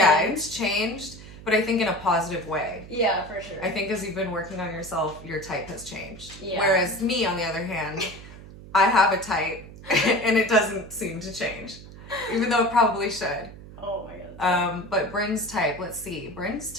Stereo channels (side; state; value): right; noise; hum, 16 dB below the sound